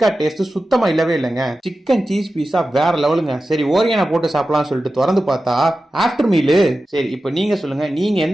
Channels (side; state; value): both; normal; correlation 0.94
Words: டேஸ்ட் சுத்தமா இல்லவே இல்லைங்க. சிக்கன் சீஸ் பீஸா வேற லெவலுங்க. சரி ஓரியானா போட்டு சாப்பிடலாம் சொல்லிட்டு திறந்து பார்த்தா ஆஃப்டர் மீலு. சரி இப்போ நீங்க சொல்லுங்க, நீங்க